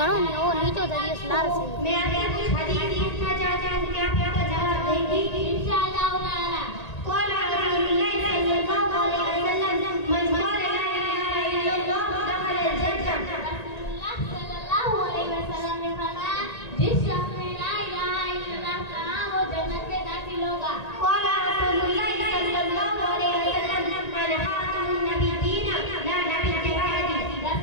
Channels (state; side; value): late; right; 1.8 ms